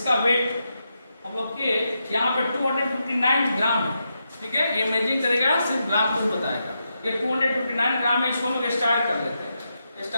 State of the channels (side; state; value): both; inverted; correlation -0.85